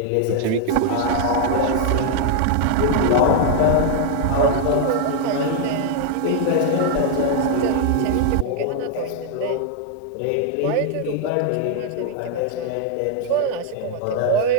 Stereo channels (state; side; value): different; both; correlation 0.00